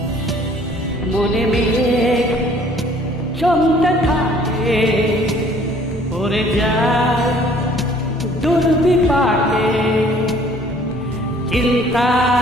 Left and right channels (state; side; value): normal; both; correlation 0.56